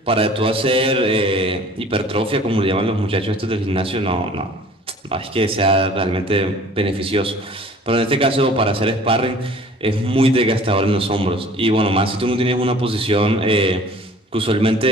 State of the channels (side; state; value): both; normal; correlation 0.49